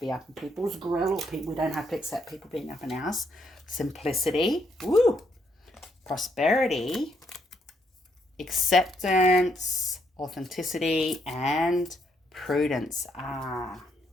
up in people's grill, or we don't have to accept people being up in ours. Simplicity. Woo. Prosperity. Acceptance. Authenticity. And prudence.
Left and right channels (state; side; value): normal; both; correlation 0.74